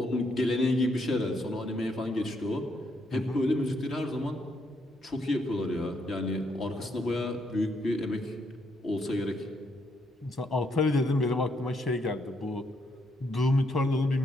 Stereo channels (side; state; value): both; normal; correlation 0.75